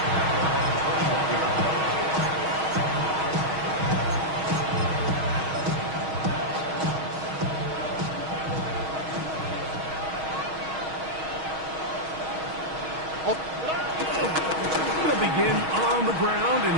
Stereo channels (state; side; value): late; left; 6.3 ms